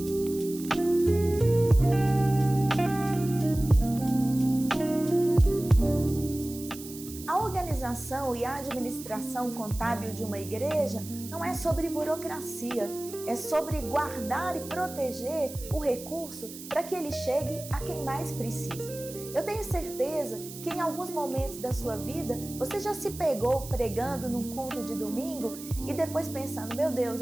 A organização e a administração contábil de uma igreja não é sobre burocracia, é sobre guardar e proteger o recurso para que ele chegue a quem mais precisa. Eu tenho certeza que em alguns momentos da sua vida você já se pegou pregando num culto de domingo e depois pensando: meu Deus,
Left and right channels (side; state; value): right; noise; hiss, 14 dB below the sound